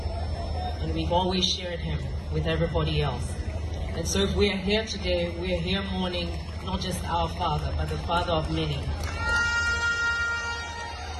and we've always shared him with everybody else. And so if we are here today, we are here mourning not just our father, but the father of many.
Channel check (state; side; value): identical; both; correlation 1.00